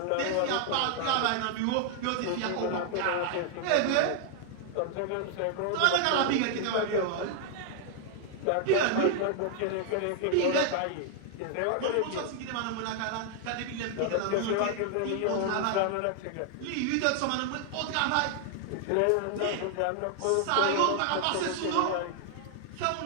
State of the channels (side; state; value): both; different; correlation 0.00